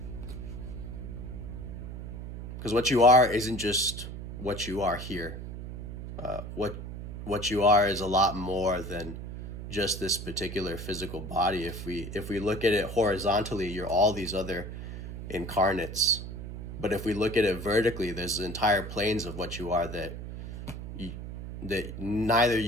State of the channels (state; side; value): noise; right; hum, 9 dB below the sound